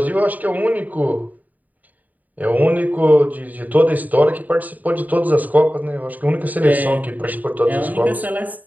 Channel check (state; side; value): late; left; 0.079 ms